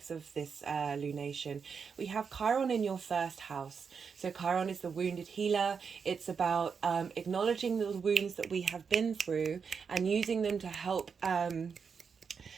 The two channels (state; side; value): quieter; left; 6.0 dB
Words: of this lunation. We have Chiron in your 1st house. So Chiron is the wounded healer. It's about acknowledging the wounds that we have been through and using them to help